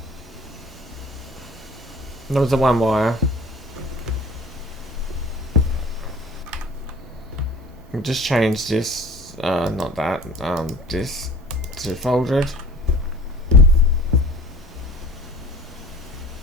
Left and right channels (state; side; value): normal; both; correlation 0.45